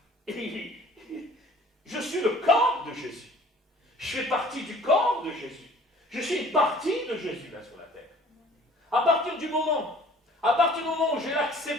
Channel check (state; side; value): normal; both; correlation 0.52